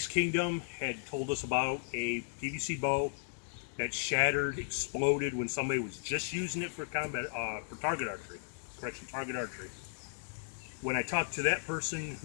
Kingdom had told us about a PVC bow that shattered, exploded when somebody was just using it for combat, for target archery. Target archery. When I talked to that person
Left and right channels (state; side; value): silent; right; digital silence